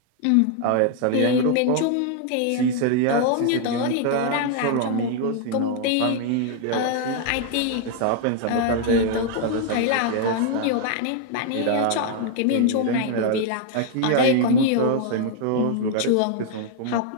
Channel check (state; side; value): different; both; correlation 0.00